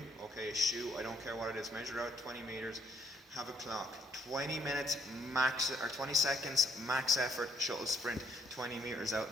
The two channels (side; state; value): both; normal; correlation 0.69